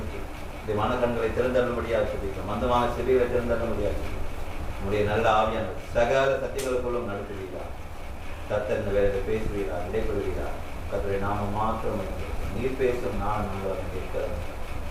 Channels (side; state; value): both; identical; correlation 1.00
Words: இந்த மனக்கண்களை திறந்தரும்படியாக சொல்லிக்கிறோம். மந்தமான செவிகளை திறந்தரும்படியாக சொல்லி நம்முடைய நல்ல ஆவியான சகல சத்தியங்களுக்குள்ளும் நடத்துவீரார். கர்த்தர் இந்த வேலையில் பேசுவீரார், இடைப்படுவீரார். கர்த்தருடைய நாம மாற்றம் நீர் பேசும் நான் நாங்கள் இருக்கிற